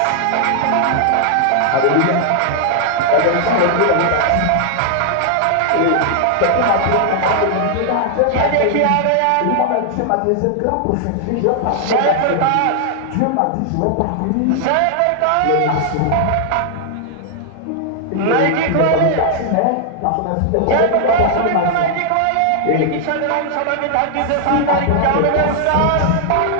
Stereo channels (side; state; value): both; different; correlation -0.01